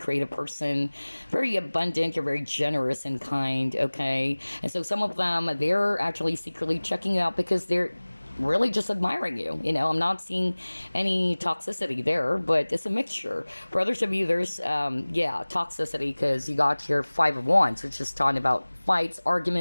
person, very abundant, you're very generous and kind, okay? And so some of them, they're actually secretly checking you out because they're really just admiring you. I'm not seeing any toxicity there, but it's a mixture. For others of you, there's toxicity because you got your Five of Wands, which is talking about fights,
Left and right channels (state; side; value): inverted; both; correlation -1.00